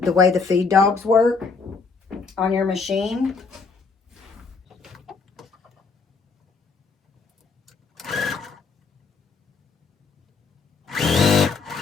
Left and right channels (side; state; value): right; quieter; 4.7 dB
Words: the way the feed dogs work on your machine.